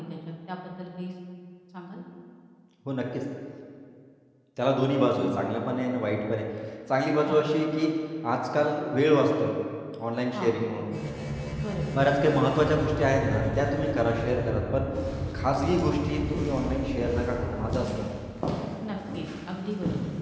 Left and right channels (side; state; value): both; identical; correlation 1.00